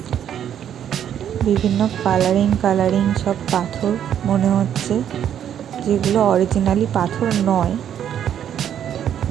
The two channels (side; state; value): left; quieter; 9.7 dB